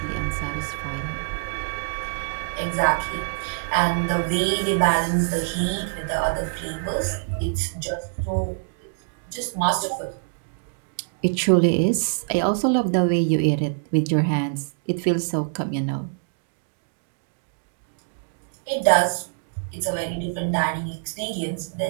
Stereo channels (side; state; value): left; silent; digital silence